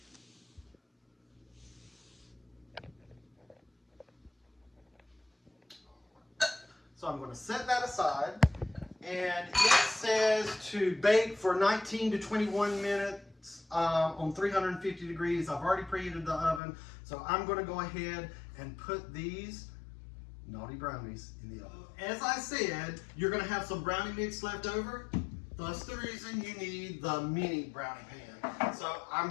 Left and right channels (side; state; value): right; drops out; at 16.6 s